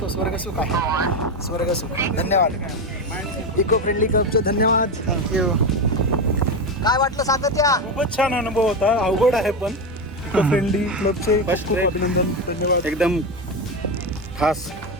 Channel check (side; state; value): both; normal; correlation 0.14